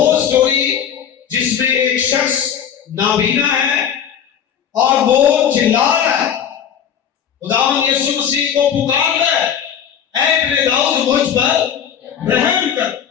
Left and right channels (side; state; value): right; quieter; 8.6 dB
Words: स्टोरी जिसमें एक शख्स नाबीना है और वो चिल्ला रहा है, खुदावंद यीशु मसीह को पुकार रहा है, ऐ इब्ने दाऊद मुझ पर रहम कर।